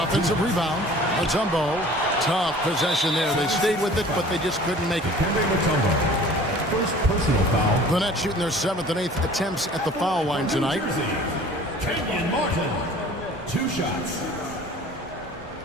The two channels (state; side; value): normal; both; correlation 0.47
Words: offensive rebound. Mutombo. Tough possession there. They stayed with it, but they just couldn't make it. First personal foul. The Nets shooting their 7th and 8th attempts at the foul line tonight. Kenyon Martin. 2 shots.